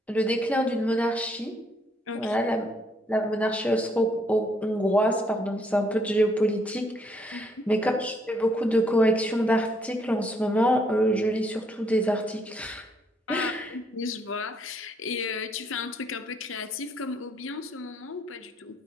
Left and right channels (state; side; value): normal; both; correlation 0.70